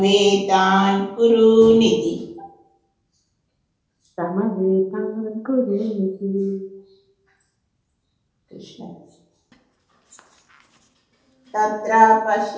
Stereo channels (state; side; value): identical; both; correlation 1.00